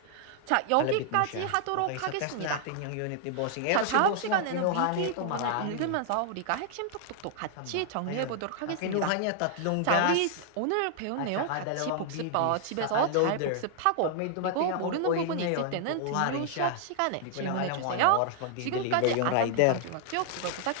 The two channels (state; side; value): different; both; correlation 0.00